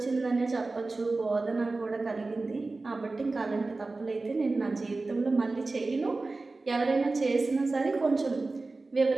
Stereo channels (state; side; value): quieter; left; 3.5 dB